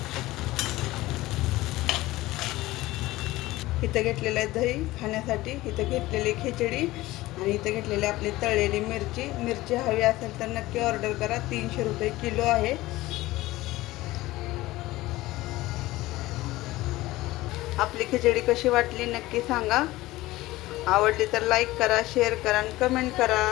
इथं घेतलेलं आहे दही खाण्यासाठी. इथं घेतलेली खिचडी आणि इथं घेतलेली आपली तळलेली मिरची. मिरची हवी असेल तर नक्की ऑर्डर करा. 300 रुपये किलो आहे. आपली खिचडी कशी वाटली नक्की सांगा. आवडली तर लाईक करा, शेअर करा आणि कमेंट करा.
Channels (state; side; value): quieter; right; 18.1 dB